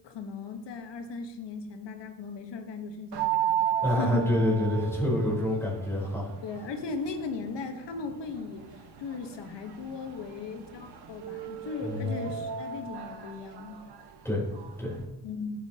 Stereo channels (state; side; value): normal; both; correlation 0.45